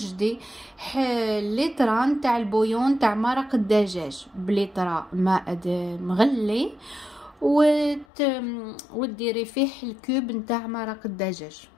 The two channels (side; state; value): right; drops out; at 8.1 s